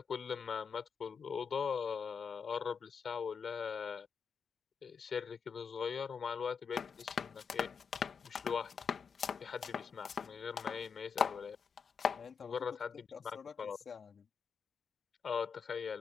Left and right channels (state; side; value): quieter; right; 6.2 dB